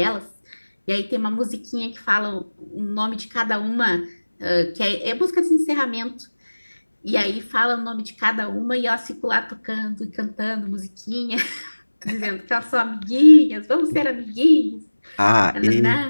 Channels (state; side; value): inverted; both; correlation -1.00